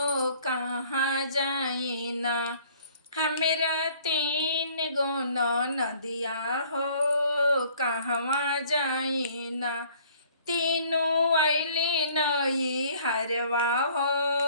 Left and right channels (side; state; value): both; inverted; correlation -0.56